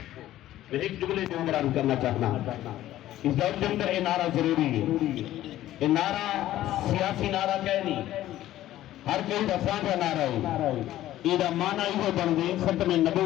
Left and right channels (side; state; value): right; quieter; 14.0 dB